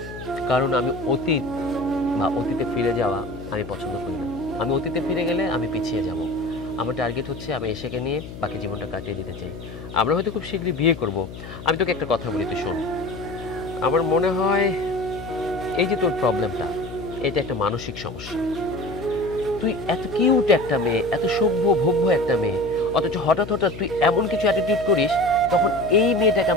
কারণ আমি অতীত বা অতীতে ফিরে যাওয়া আমি পছন্দ করি না। আমি অতীতে ফিরে গেলে আমি পিছিয়ে যাব। আমার টার্গেট হচ্ছে আমি এসেকে নিয়ে বাকি জীবনটা কাটিয়ে দিতে চাই। আমরা হয়তো খুব শীঘ্রই বিয়ে করব। আমি তোকে একটা কথা বলি, তুই শোন। আমার মনে হয় এই যে তোর প্রবলেমটা, এটা একটা মানসিক সমস্যা। তুই এত কিউট একটা মেয়ে, এত সভ্য ভব্য একটা মেয়ে, অথচ হঠাৎ হঠাৎ তুই এমন কিছু অ্যাটিটিউড করিস, তখন এই মেয়েটাকে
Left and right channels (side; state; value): left; noise; hum, 12 dB below the sound